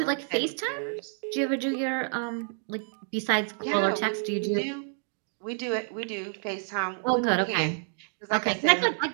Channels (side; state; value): left; silent; 59 dB below the other